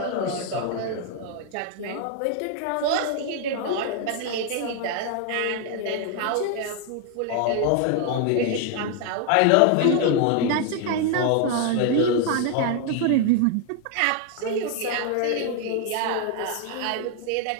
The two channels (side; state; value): both; different; correlation 0.00